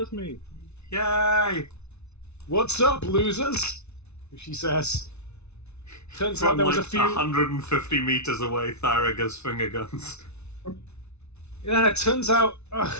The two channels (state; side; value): late; right; 0.81 ms